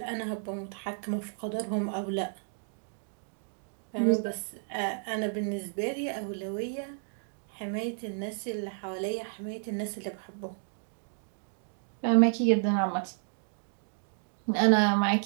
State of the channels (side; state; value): left; silent; digital silence